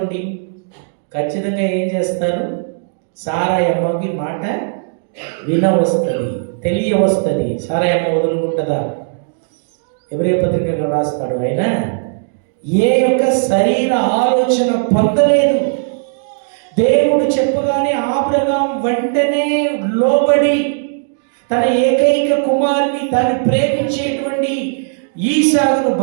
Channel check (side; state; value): left; silent; digital silence